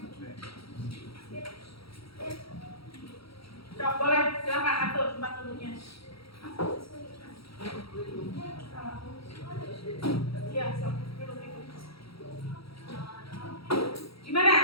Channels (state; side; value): late; right; 0.75 ms